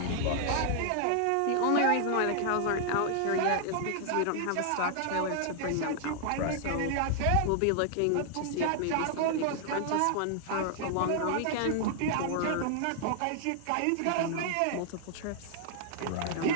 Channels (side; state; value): both; different; correlation 0.00